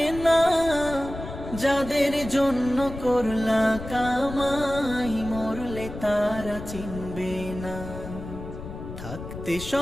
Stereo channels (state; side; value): noise; left; rumble, 11 dB below the sound